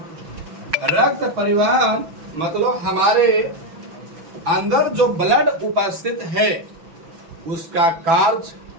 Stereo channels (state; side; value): late; left; 6.0 ms